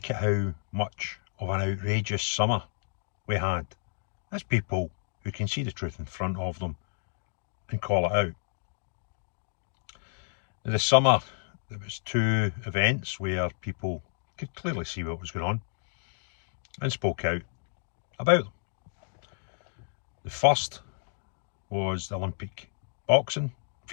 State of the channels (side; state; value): right; silent; digital silence